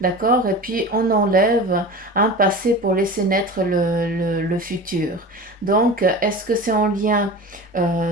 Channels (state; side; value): normal; both; correlation 0.33